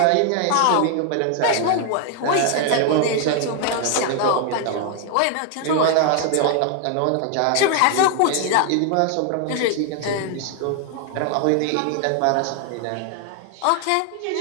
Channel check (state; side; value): different; both; correlation 0.00